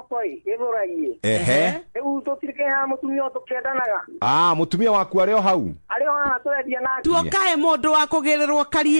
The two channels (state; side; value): inverted; both; correlation -1.00